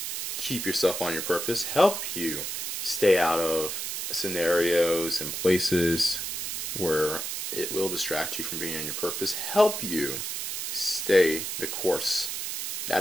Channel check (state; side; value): noise; right; hiss, 4 dB below the sound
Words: keep yourself on your purpose, help you stay out of scenarios and places where it will distract you from being on your purpose, help you stay the course. That